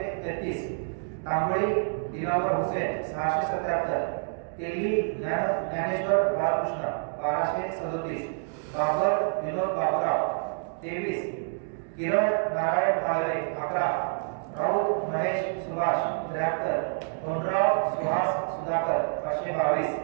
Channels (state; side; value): silent; left; digital silence